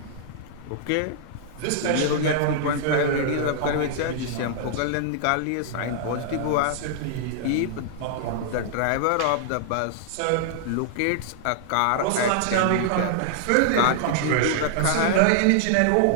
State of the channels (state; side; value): different; both; correlation -0.01